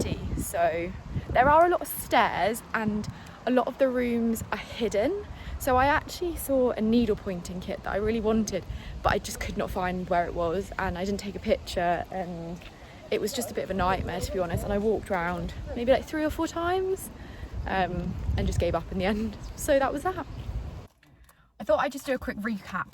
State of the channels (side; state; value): both; identical; correlation 1.00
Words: So there are a lot of stairs and a lot of the rooms are hidden. So I actually saw a needle pointing kit that I really wanted, but I just could not find where it was, and I didn't take a picture, and it was just a bit of a nightmare, to be honest. And I walked around maybe like 3 or 4 times and just gave up in the end. So that was that. I thought I'd just do a quick recap